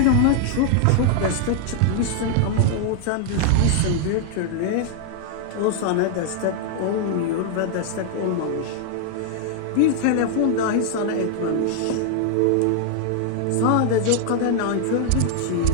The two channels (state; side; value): different; both; correlation 0.00